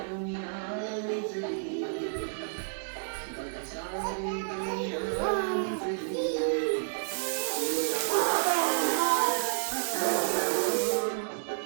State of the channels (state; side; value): silent; left; digital silence